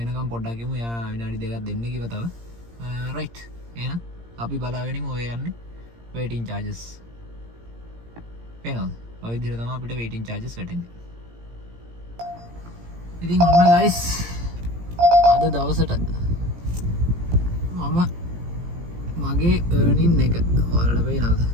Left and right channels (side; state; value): left; late; 17 ms